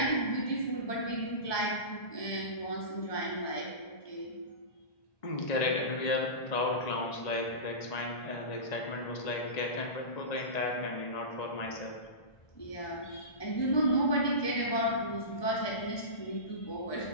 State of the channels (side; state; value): right; late; 1.2 ms